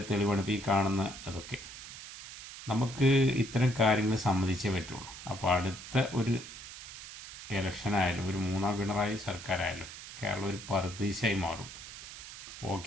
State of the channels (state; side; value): noise; right; hiss, 13 dB below the sound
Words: തെളിവാണ് ഇപ്പോൾ ഈ കാണുന്ന അതൊക്കെ. നമുക്ക് ഇത്തരം കാര്യങ്ങൾ സമ്മതിച്ചേ പറ്റുള്ളൂ. അപ്പോൾ അടുത്ത ഒരു ഇലക്ഷനായാലും ഒരു മൂന്നാം പിണറായി സർക്കാരായാലും കേരളം ഒരു പറുദീസയായി മാറും.